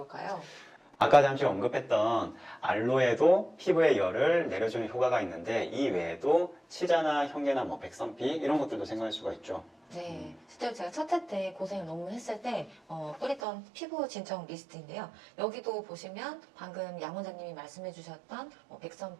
아까 잠시 언급했던 알로에도 피부에 열을 내려주는 효과가 있는데, 이 외에도 치자나 형계나 뭐 백선피 이런 것들도 생각할 수가 있죠. 네, 실제로 제가 첫 해 때 고생을 너무 했을 때 뿌렸던 피부 진정 리스트인데요. 여기도 보시면 방금 양 원장님이 말씀해 주셨던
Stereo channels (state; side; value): drops out; left; at 13.4 s